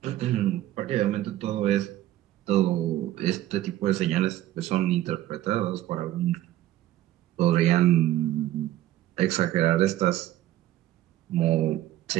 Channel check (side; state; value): left; quieter; 14.2 dB